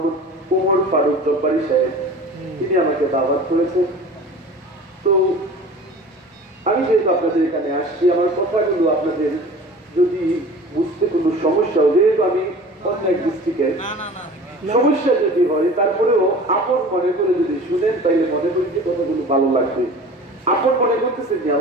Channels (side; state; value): both; normal; correlation 0.41